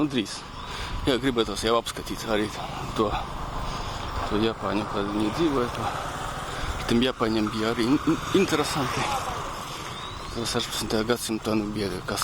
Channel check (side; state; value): both; identical; correlation 1.00